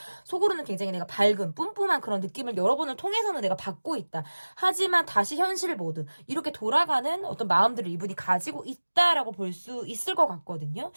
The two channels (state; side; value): inverted; both; correlation -1.00